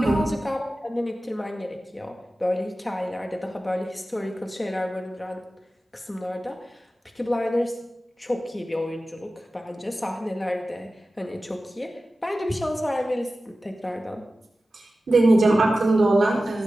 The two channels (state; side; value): normal; both; correlation 0.95